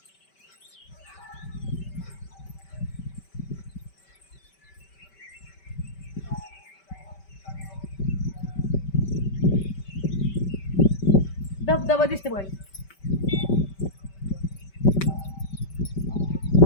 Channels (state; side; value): late; right; 5.2 ms